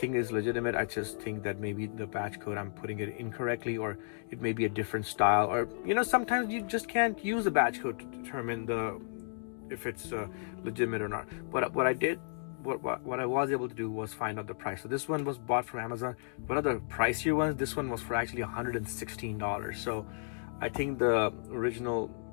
it's legitimate. I just think that maybe the batch code, I'm putting it incorrectly, or it may be a different style, or, you know, sometimes you just can't use a batch code to determine if it's legitimate or not. But what I did, what I was able to do was find out the price. So this one was bought from Amazon. One of the pricier ones, this one was for actually $116. So I think the original,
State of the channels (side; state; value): right; silent; digital silence